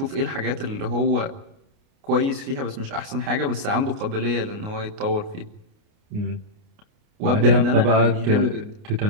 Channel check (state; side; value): late; left; 29 ms